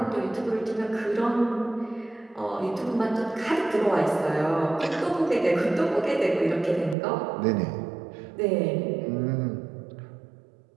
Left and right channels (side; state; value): left; drops out; at 7.0 s